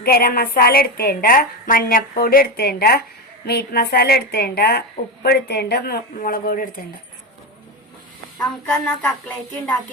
ഗരം മസാല എടുത്തേണ്ട, മഞ്ഞപ്പൊടി എടുത്തേണ്ട, മീറ്റ് മസാല എടുത്തേണ്ട, ഉപ്പ് എടുത്തേണ്ട, മുളക് പൊടി എടുത്തേണ്ട. നമുക്കെന്നാ കട്ട്ലേറ്റ്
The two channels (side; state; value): both; normal; correlation 0.15